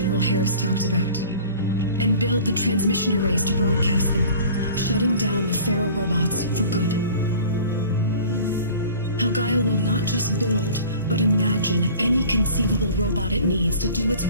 Harris talked about, and build the transmission arrays to broadcast them, shutting down the Pharaoh robots for good. How Gaia will not just build, but imagine any conceivable robot it needs to do its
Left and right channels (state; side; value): inverted; both; correlation -0.44